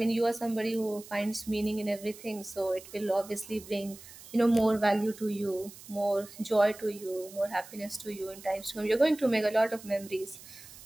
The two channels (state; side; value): noise; right; hiss, 18 dB below the sound